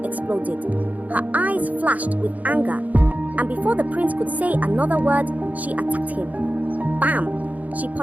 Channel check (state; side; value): late; left; 0.076 ms